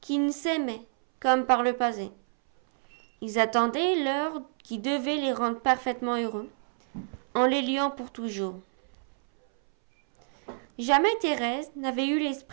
qu'ils s'aimaient comme par le passé. Ils attendaient l'heure qui devait les rendre parfaitement heureux, en les liant pour toujours. Jamais Thérèse n'avait eu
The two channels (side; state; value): left; silent; 59 dB below the other